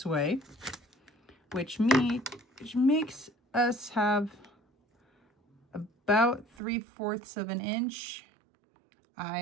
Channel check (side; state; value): left; drops out; at 6.5 s